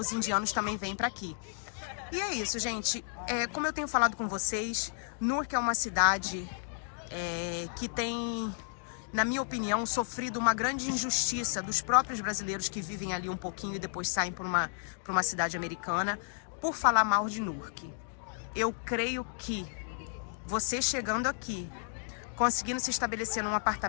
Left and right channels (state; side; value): silent; right; digital silence